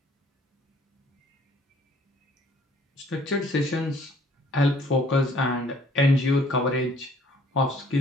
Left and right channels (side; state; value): both; normal; correlation 0.58